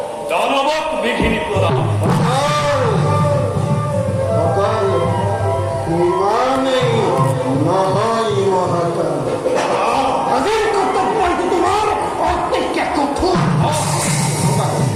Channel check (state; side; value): identical; both; correlation 1.00